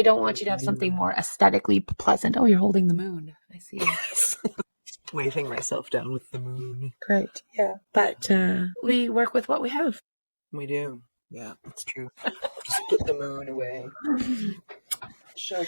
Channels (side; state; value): both; inverted; correlation -1.00